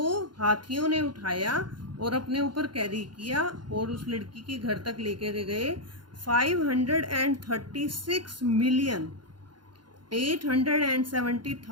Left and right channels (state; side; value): late; left; 0.71 ms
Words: हाथियों ने उठाया और अपने ऊपर कैरी किया और उस लड़की के घर तक लेकर गए.